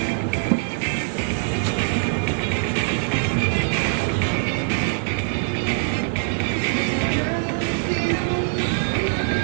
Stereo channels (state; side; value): silent; left; digital silence